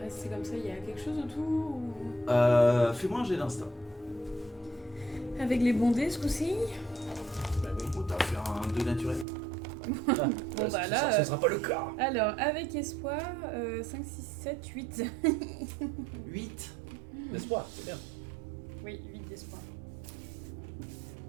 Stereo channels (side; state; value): left; drops out; at 9.2 s